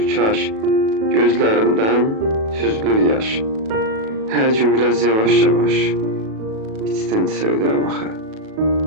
kaş, gözlərimdən süzülür yaş. Hər gün biraz yavaş-yavaş, içdən sevdirəm axı,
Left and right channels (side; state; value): left; late; 37 ms